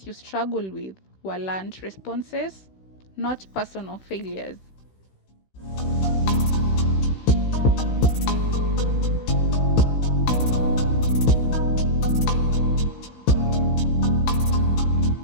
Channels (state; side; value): late; right; 16 ms